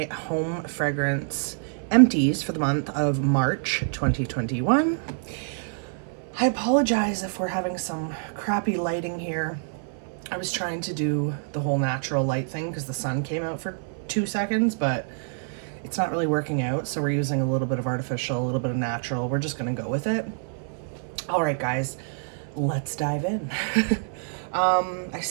home fragrance empties for the month of March 2021. I apologize if we're having some crappy lighting here. I was trying to do the whole natural light thing because the sun came out for 2 seconds, but it's not really working out, so we're using a little bit of artificial, a little bit of natural. We're just gonna go with it. All right, guys, let's dive in. I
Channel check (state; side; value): silent; left; 61 dB below the other